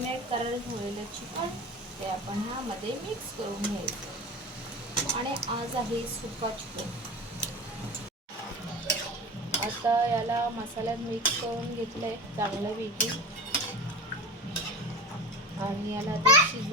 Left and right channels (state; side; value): normal; both; correlation 0.29